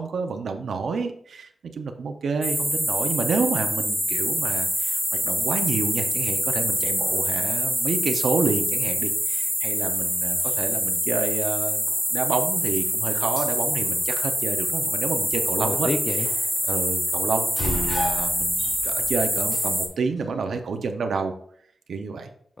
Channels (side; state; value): both; normal; correlation 0.92